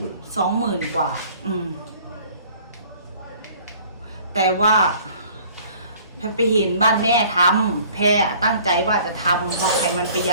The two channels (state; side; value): inverted; both; correlation -0.53